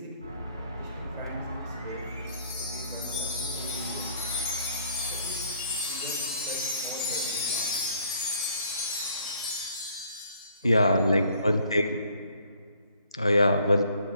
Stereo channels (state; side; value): inverted; both; correlation -0.63